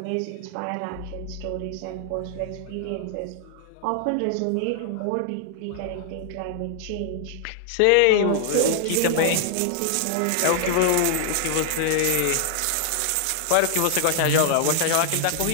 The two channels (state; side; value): different; both; correlation 0.00